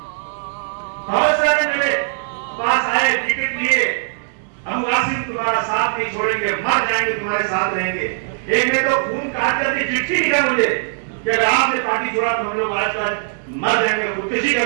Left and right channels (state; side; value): silent; left; 66 dB below the other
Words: बहुत सारे मेरे पास आए, टिकट लिए, हम वासिम तुम्हारा साथ नहीं छोड़ेंगे, मर जाएंगे तुम्हारे साथ रहेंगे। एक ने तो खून काट करके चिट्ठी लिखा मुझे कि अगर आपने पार्टी छोड़ा तो हम लोग आज मर जाएंगे, खुदकुशी